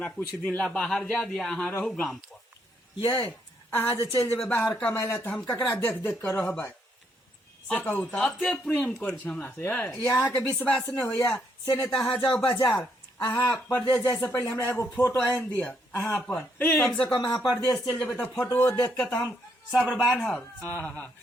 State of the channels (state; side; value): normal; both; correlation 0.74